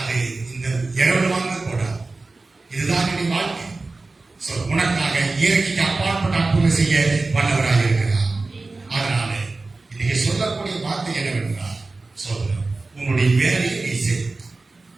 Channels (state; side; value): quieter; left; 3.5 dB